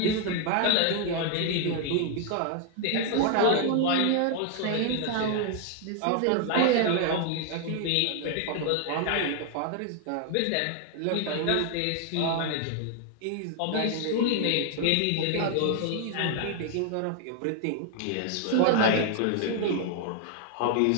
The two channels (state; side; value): different; both; correlation 0.00